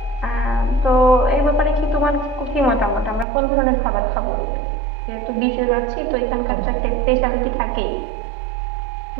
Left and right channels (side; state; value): left; drops out; at 3.2 s